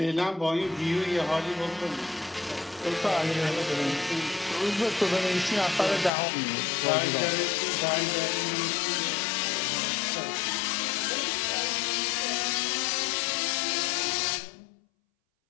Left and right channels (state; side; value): drops out; right; at 6.1 s